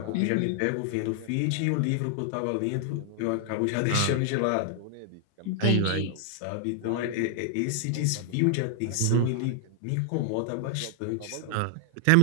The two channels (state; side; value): different; both; correlation 0.00